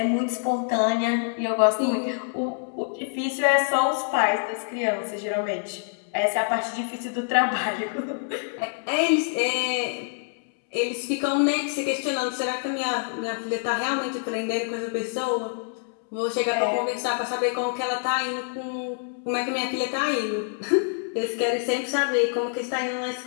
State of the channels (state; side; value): silent; right; 61 dB below the other